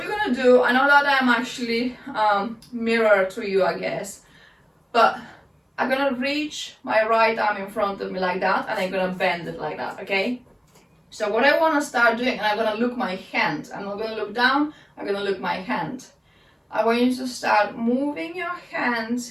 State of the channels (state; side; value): identical; both; correlation 1.00